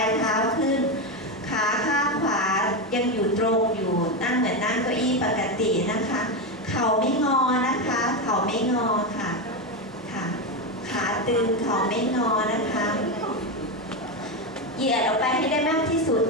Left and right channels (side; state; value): both; normal; correlation 0.12